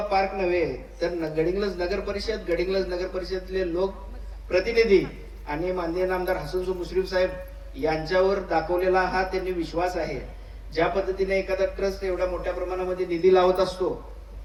पार्क नव्हे तर गडिंग्लज नगर परिषदेतले लोक प्रतिनिधी आणि माननीय नामदार हसन मुश्रीफ साहेब यांच्यावर दाखवलेला हा त्यांनी विश्वास आहे। ज्या पद्धतीने एखादा ट्रस्ट एवढ्या मोठ्या प्रमाणामध्ये निधी लावत असतो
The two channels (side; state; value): both; identical; correlation 1.00